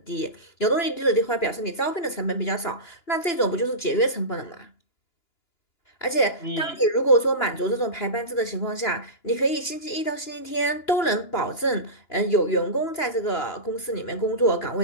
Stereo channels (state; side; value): late; right; 2.9 ms